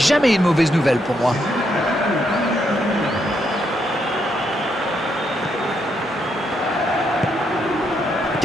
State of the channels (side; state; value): both; normal; correlation 0.78